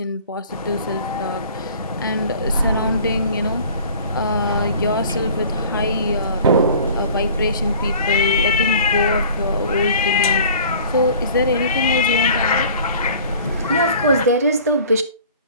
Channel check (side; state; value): both; inverted; correlation -0.47